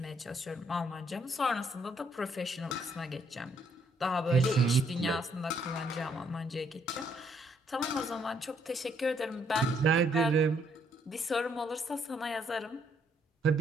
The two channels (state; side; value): normal; both; correlation 0.70